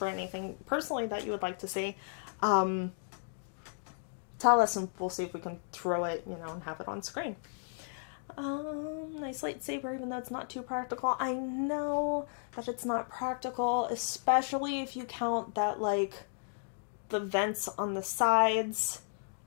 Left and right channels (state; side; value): silent; right; digital silence